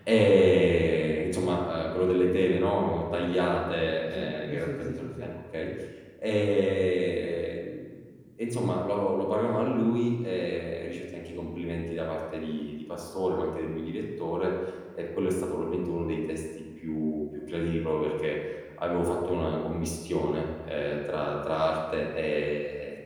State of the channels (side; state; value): both; identical; correlation 1.00